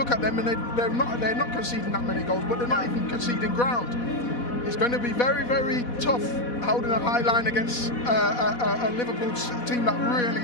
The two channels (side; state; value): right; late; 4.1 ms